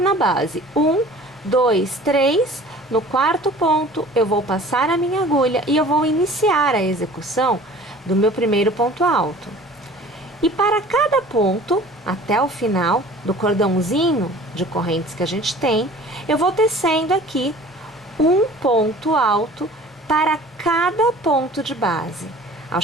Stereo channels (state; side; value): normal; both; correlation 0.46